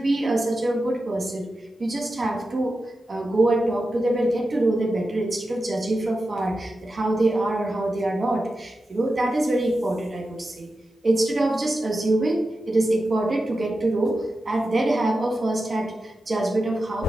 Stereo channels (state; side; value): normal; both; correlation 0.91